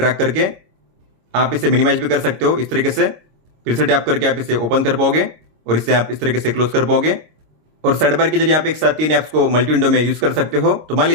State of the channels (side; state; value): left; late; 26 ms